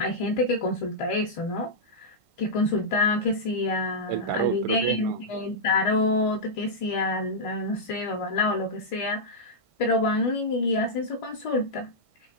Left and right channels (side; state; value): right; late; 1.5 ms